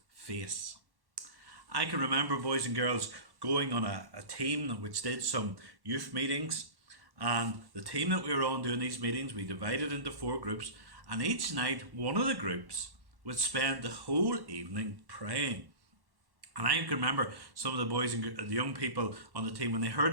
face. I can remember, boys and girls, going on a team which did some youth meetings, and the team that we were on doing these meetings, we divided into 4 groups, and each night one of the groups would spend the whole evening praying. And I can remember some of the boys and the young people on the team, when they heard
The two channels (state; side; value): late; left; 1.1 ms